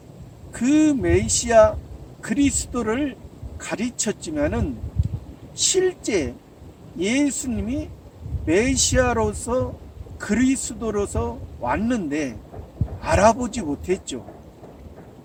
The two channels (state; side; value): identical; both; correlation 1.00